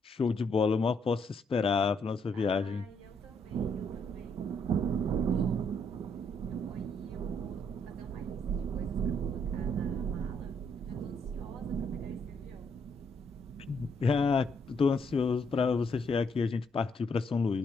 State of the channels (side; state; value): both; normal; correlation 0.72